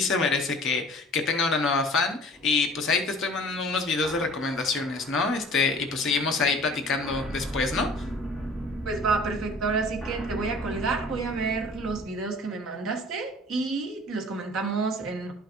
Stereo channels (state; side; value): normal; both; correlation 0.47